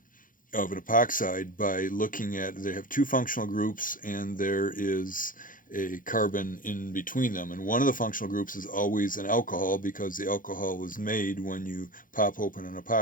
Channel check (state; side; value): late; right; 0.39 ms